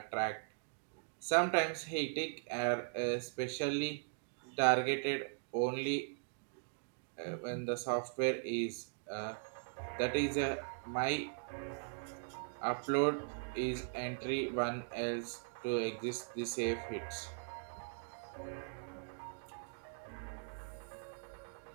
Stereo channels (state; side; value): silent; left; digital silence